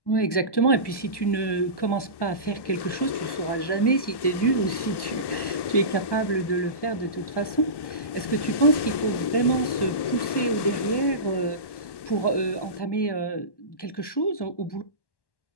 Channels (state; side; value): late; right; 1.1 ms